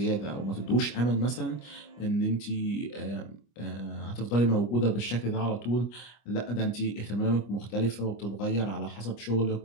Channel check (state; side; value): late; right; 25 ms